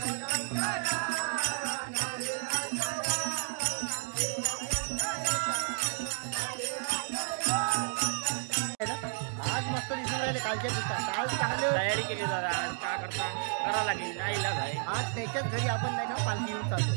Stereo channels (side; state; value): left; silent; 57 dB below the other